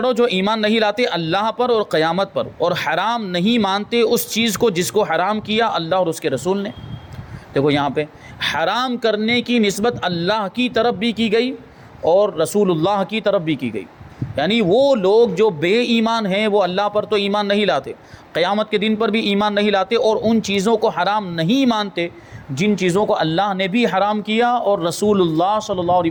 جو ایمان نہیں لاتے اللہ پر اور قیامت پر، اور حرام نہیں مانتے اس چیز کو جس کو حرام کیا اللہ اور اس کے رسول نے۔ دیکھو یہاں پہ حرام کرنے کی نسبت اللہ کی طرف بھی کی گئی اور رسول اللہ کی طرف بھی کی گئی، یعنی وہ لوگ جو بے ایمان ہیں وہ اللہ پر تو ایمان نہیں لاتے، قیامت کے دن پر بھی ایمان نہیں لاتے، اور ان چیزوں کو حرام نہیں مانتے جن چیزوں کو اللہ نے بھی حرام کیا اور رسول اللہ صلی اللہ علیہ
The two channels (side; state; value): both; identical; correlation 1.00